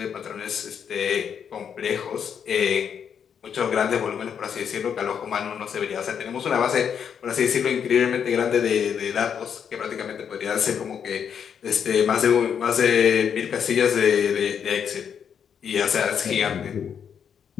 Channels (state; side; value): quieter; right; 7.7 dB